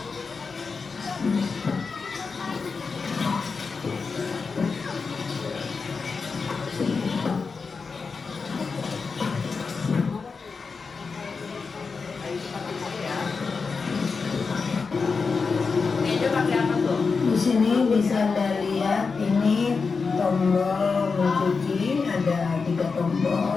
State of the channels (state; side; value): quieter; right; 4.8 dB